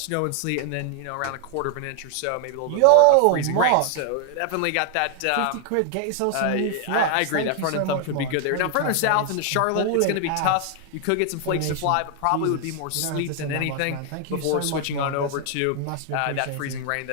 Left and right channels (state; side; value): different; both; correlation 0.00